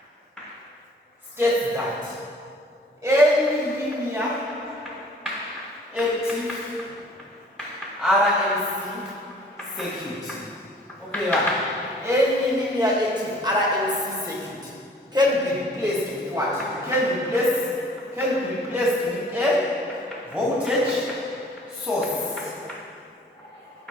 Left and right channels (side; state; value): both; normal; correlation 0.52